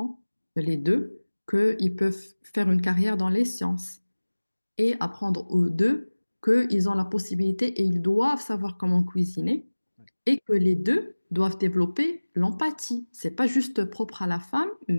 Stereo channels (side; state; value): both; inverted; correlation -1.00